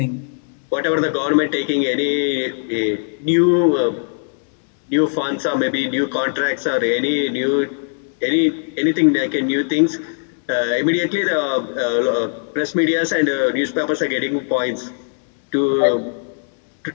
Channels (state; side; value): silent; right; digital silence